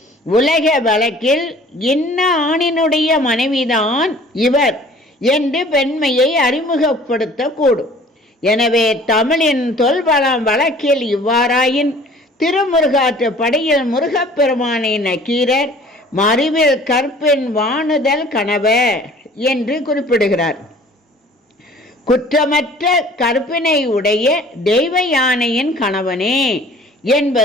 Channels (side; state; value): both; normal; correlation 0.50